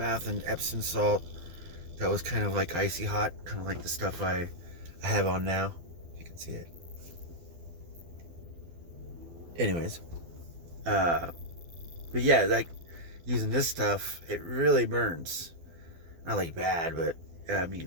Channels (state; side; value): late; left; 12 ms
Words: in Epsom salt that was kind of like icy hot, kind of like the stuff I have on now. If you can see it. Anyways, uh, but yeah, like using this stuff, it really burns. Not like bad, but I